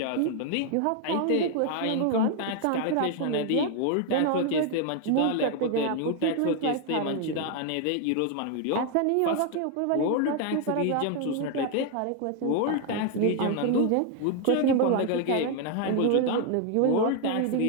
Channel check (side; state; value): both; different; correlation 0.01